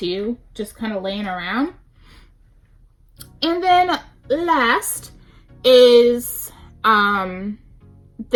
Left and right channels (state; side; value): identical; both; correlation 1.00